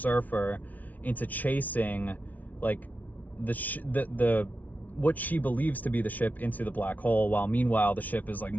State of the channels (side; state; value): right; late; 0.075 ms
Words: into chasing like the what she believes to be the ship into the black hole, while meanwhile the ship is like